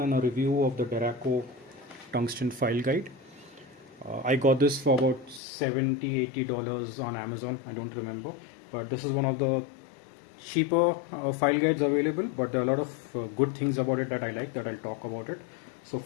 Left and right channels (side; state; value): right; drops out; at 5.4 s